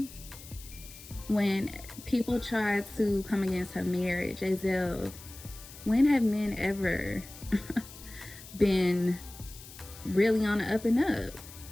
when people try to come against her marriage, as if, when have men ever been really on the up and up?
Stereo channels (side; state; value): left; noise; hiss, 17 dB below the sound